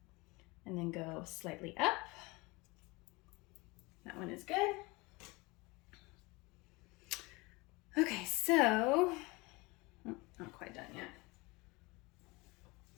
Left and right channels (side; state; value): right; quieter; 24.3 dB